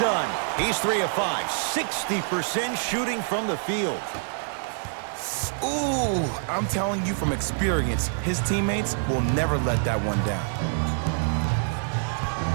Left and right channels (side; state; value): left; silent; digital silence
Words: He's 3 of 5, 60% shooting from the field. Ooh, I'm telling you from experience, his teammates will never let that one down.